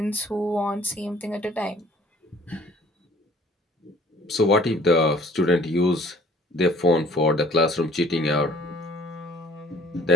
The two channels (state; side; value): normal; both; correlation 0.54